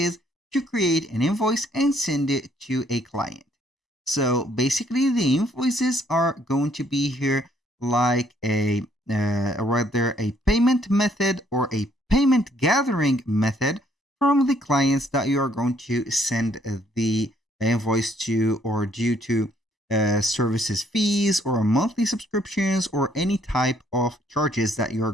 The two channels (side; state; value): both; normal; correlation 0.67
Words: to create an invoice and send it to a client. So basically the invoices are going to be here like rather a payment method or a payment gathering method from the clients that you are going to send the invoice to or due to services fees or monthly subscriptions or any type of charges that you are